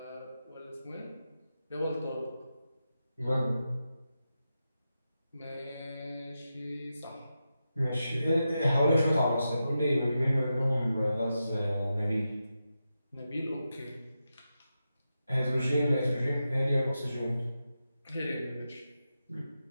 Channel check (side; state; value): both; inverted; correlation -0.89